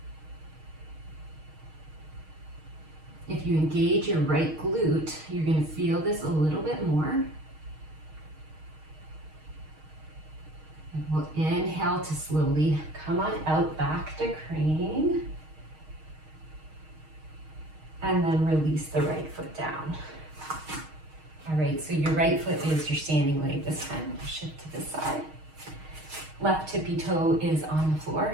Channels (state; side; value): late; left; 6.4 ms